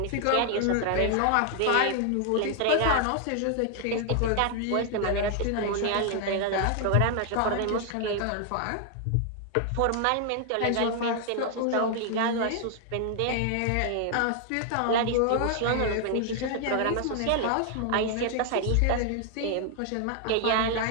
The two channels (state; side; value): different; both; correlation 0.00